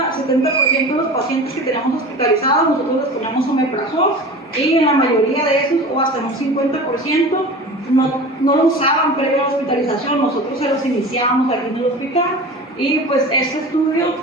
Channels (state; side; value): normal; both; correlation 0.35